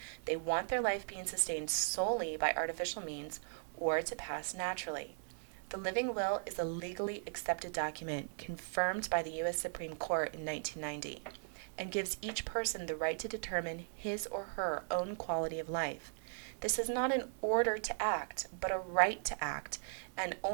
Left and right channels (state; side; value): silent; left; digital silence